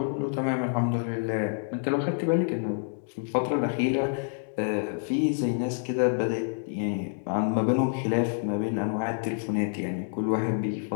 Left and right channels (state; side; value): silent; right; digital silence